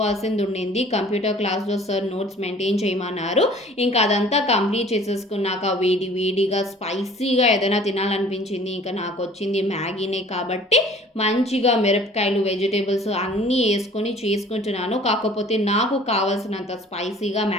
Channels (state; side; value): normal; both; correlation 0.50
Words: ఉండింది. కంప్యూటర్ క్లాస్లో సార్ నోట్స్ మెయింటైన్ చేయమన్నారు. ఇంకా అదంతా కంప్లీట్ చేసేసుకున్నాక వేడి వేడిగా స్పైసీగా ఏదైనా తినాలనిపించింది. ఇంకా నాకు వచ్చింది మ్యాగీనే కాబట్టి మంచిగా మిరపకాయలు వెజిటేబుల్స్ అన్నీ వేసుకొని చేసుకుంటున్నాను. కాకపోతే నాకు కావాల్సినంత స్పైసీగా